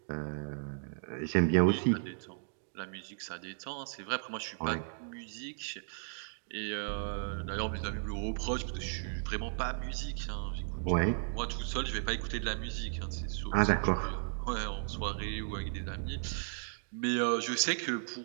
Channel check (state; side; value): silent; left; digital silence